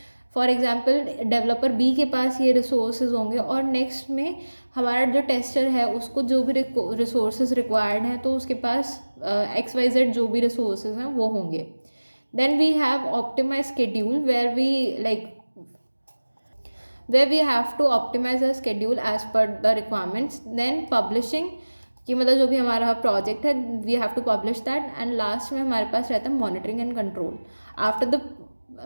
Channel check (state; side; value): inverted; both; correlation -1.00